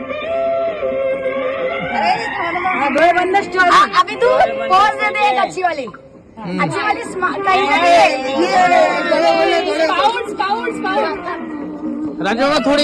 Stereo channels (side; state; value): both; identical; correlation 1.00